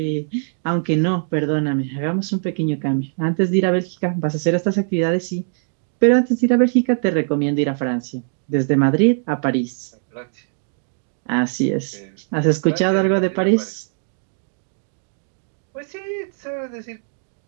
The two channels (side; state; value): left; silent; digital silence